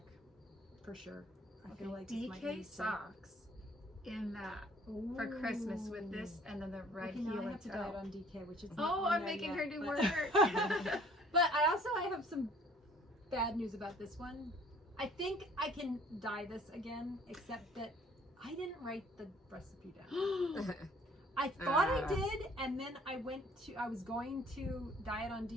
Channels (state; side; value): normal; both; correlation 0.55